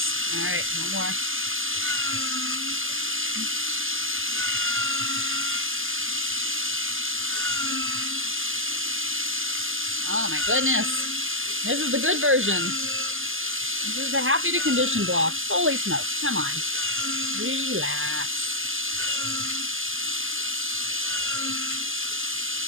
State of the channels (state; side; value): late; left; 0.59 ms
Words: All right, one more. Oh my goodness. This is the good version. This is the happy to condition block. Holy smokes. Come on. Relax.